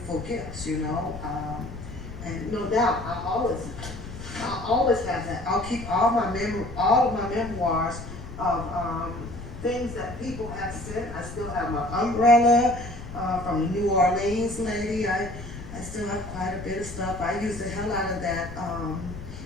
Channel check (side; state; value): left; noise; rumble, 11 dB below the sound